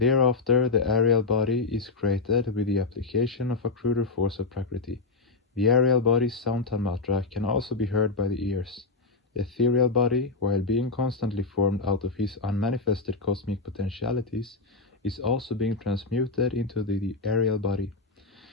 the aerial body is created with the application of a cruder force of Prakriti. The aerial body's sound tanmatra can also be heard by the ears. The ethereal body, while being constantly formed out of his unmanifested cosmic potentialities, is also being transmuted into the aerial body,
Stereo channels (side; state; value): right; quieter; 3.8 dB